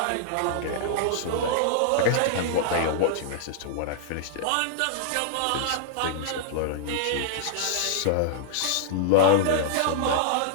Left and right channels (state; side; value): different; both; correlation -0.01